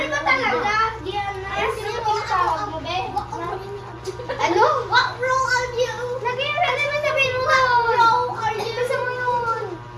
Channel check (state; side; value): identical; both; correlation 1.00